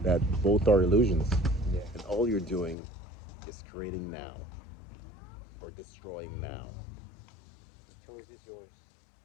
that both are illusions. Yeah. And all you're doing is creating now or destroying now. The choice is yours.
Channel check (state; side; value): drops out; right; at 2.8 s